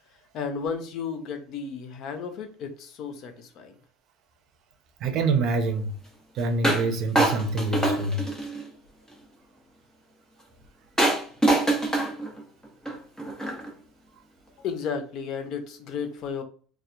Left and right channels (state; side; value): normal; both; correlation 0.52